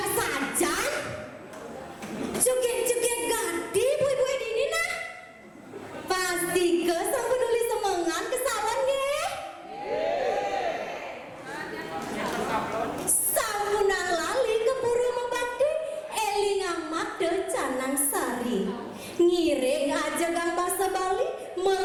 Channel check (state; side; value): identical; both; correlation 1.00